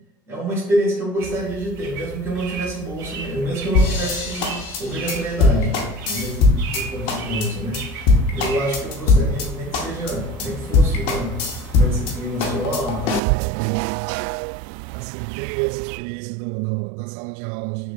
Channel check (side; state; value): left; drops out; at 13.2 s